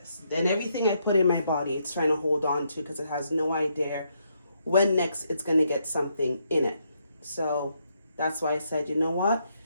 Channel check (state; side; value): inverted; both; correlation -0.77